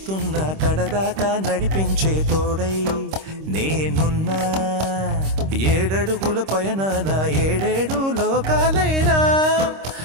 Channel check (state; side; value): late; left; 26 ms